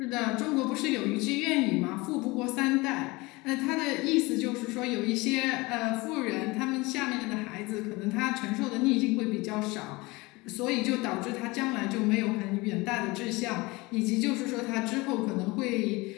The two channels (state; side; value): quieter; right; 23.2 dB